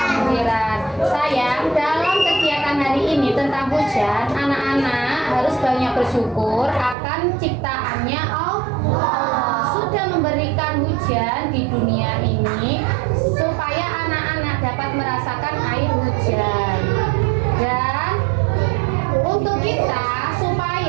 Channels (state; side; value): drops out; left; at 7.0 s